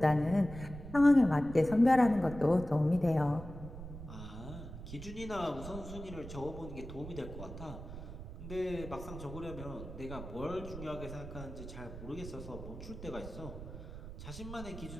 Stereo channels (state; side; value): noise; right; rumble, 11 dB below the sound